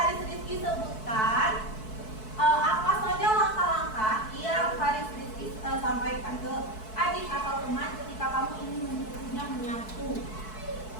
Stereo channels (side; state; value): right; late; 4.6 ms